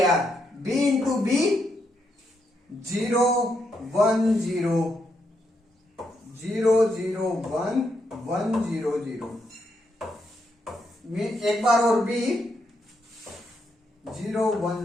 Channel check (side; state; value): both; normal; correlation 0.79